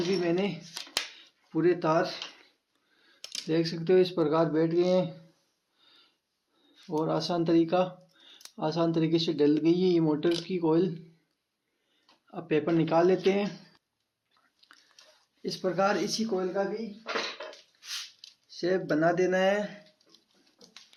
भी मैंने पूरे तार देख सकते हो इस प्रकार बैठ गए हैं और आसान तरीके से डल गई है ये मोटर की कोयल। अब पेपर निकाल लेते हैं। इस प्रकार इसी कोयल का भी शेप बना देना है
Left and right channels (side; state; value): both; identical; correlation 1.00